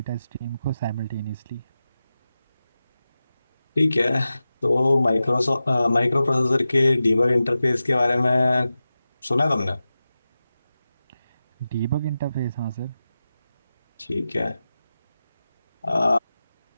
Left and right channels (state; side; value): inverted; both; correlation -0.93